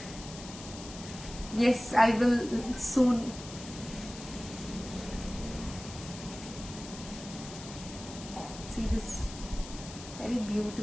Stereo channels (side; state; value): left; noise; hiss, 13 dB below the sound